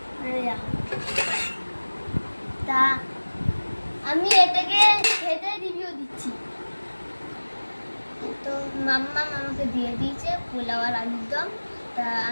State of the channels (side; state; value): both; inverted; correlation -1.00